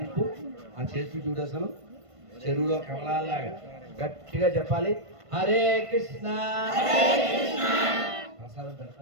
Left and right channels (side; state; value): left; late; 1.5 ms